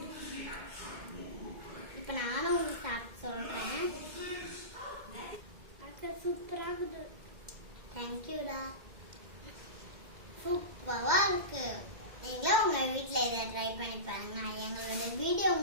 இப்போ நானும் உங்களுக்கு சாப்பிட்டு சொல்கிறேன். சூப்பராக இருக்குது. தேங்க்யூடா. சூப்பரா இருக்கு. நீங்களும் உங்க வீட்ல இதை ட்ரை பண்ணி பாருங்க. எங்களோட வீடியோ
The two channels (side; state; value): left; late; 2.1 ms